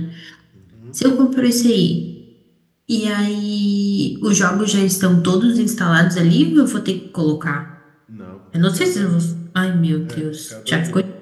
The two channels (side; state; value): both; identical; correlation 1.00